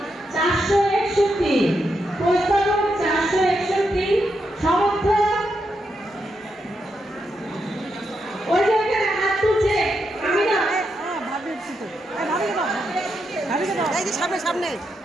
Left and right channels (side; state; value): both; normal; correlation 0.83